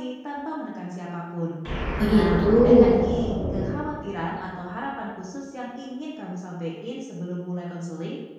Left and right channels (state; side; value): identical; both; correlation 1.00